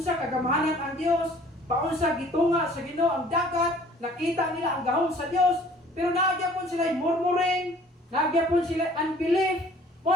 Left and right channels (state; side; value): normal; both; correlation 0.53